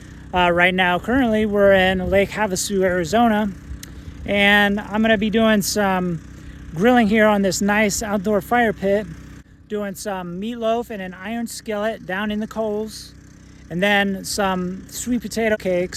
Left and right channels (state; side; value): identical; both; correlation 1.00